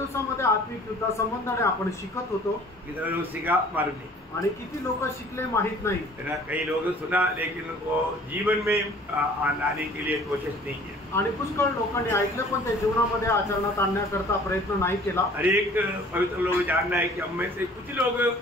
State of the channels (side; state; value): both; normal; correlation 0.51